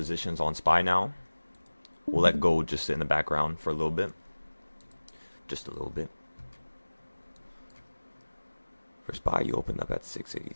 on SPY now. We'll let gold just sit in the background for a little bit. Just a little bit. For SPY, you opened up at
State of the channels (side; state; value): both; inverted; correlation -1.00